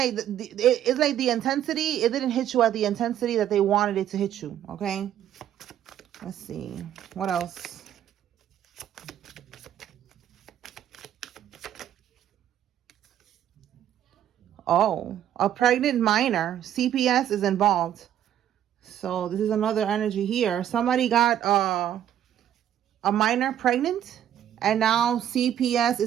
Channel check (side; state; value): left; quieter; 10.8 dB